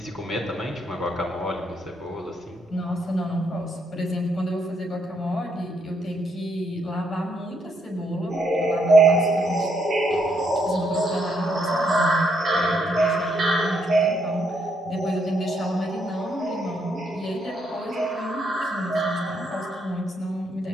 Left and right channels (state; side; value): normal; both; correlation 0.75